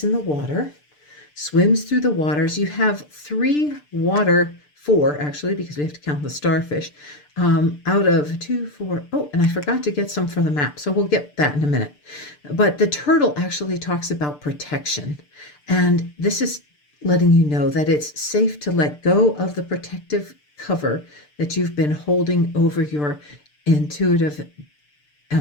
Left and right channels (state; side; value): late; right; 6.8 ms